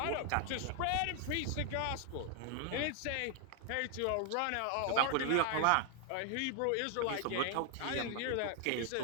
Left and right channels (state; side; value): different; both; correlation 0.00